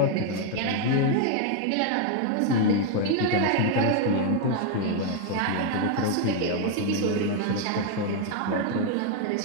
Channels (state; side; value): different; both; correlation 0.00